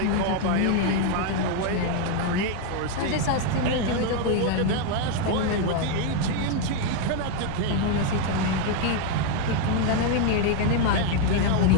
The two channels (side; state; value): both; different; correlation 0.01